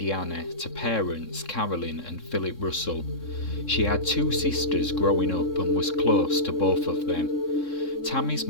to parents Carolyn and Philip Russell. She had two sisters growing up and was close to both of them. Tammy's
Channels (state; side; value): late; right; 3.7 ms